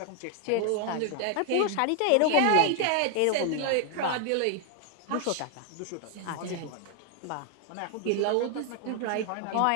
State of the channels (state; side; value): different; both; correlation 0.00